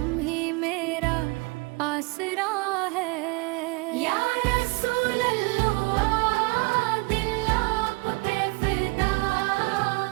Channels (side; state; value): left; quieter; 27.3 dB